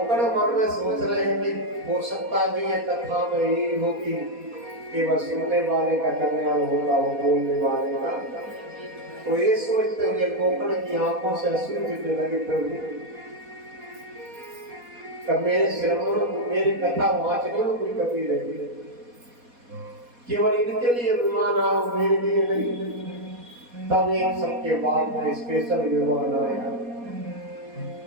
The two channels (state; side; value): late; left; 4.2 ms